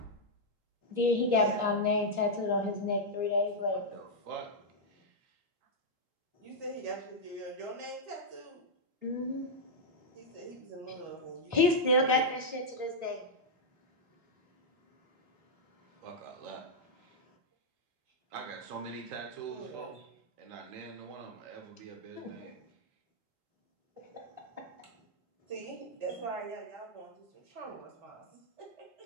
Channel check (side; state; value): left; late; 3.5 ms